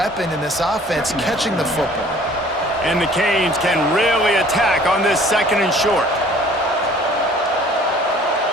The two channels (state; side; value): normal; both; correlation 0.53